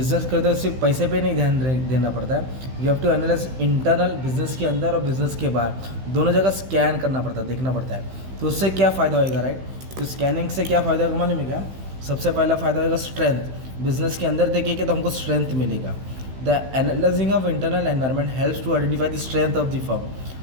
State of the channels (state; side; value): late; left; 16 ms